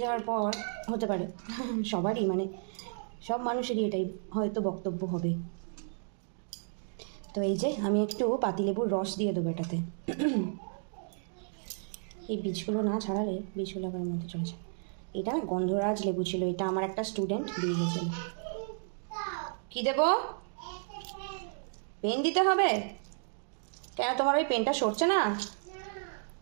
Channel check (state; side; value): silent; left; digital silence